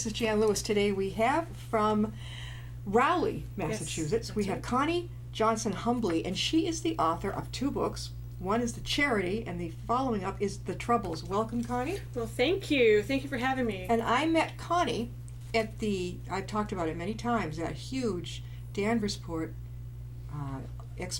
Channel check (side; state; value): both; identical; correlation 1.00